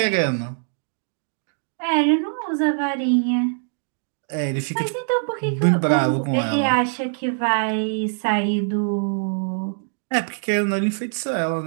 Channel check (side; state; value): left; silent; 63 dB below the other